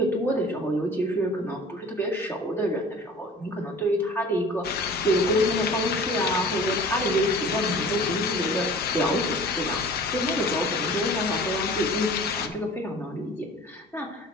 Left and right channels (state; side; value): normal; both; correlation 0.44